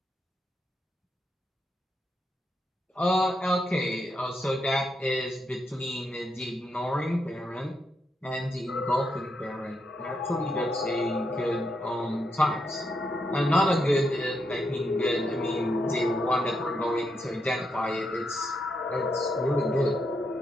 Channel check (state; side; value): normal; both; correlation 0.81